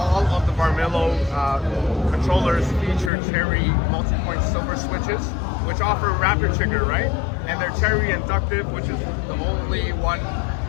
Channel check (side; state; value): right; drops out; at 3.1 s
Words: of the Varmilo controllers feature Cherry multi-point silver switches, which offer rapid trigger, right? And they're Cherry inductive, which is the only one